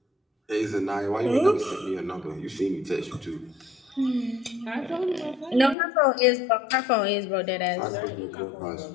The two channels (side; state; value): right; drops out; at 5.8 s